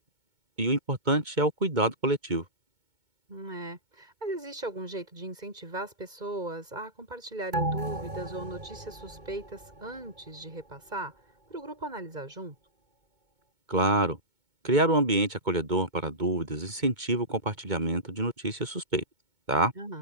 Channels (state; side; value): late; left; 2.2 ms